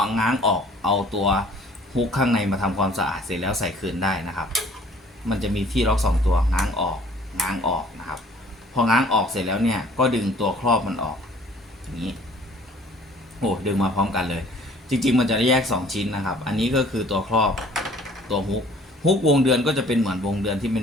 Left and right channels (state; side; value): normal; both; correlation 0.53